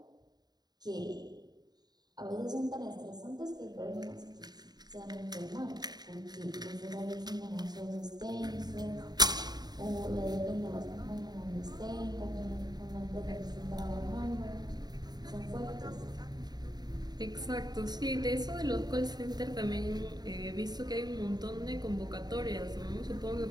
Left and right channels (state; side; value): late; left; 0.20 ms